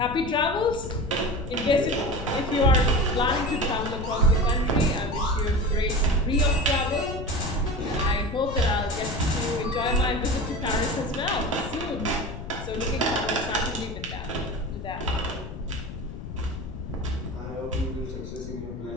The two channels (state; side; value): noise; left; rumble, 9 dB below the sound